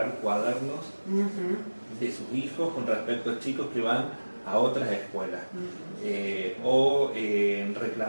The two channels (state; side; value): inverted; both; correlation -1.00